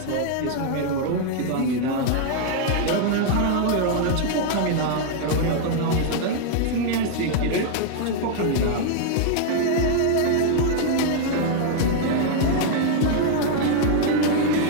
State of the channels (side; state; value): both; different; correlation 0.00